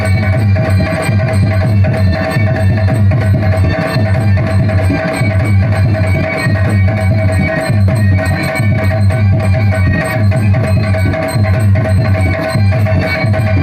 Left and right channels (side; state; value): both; identical; correlation 1.00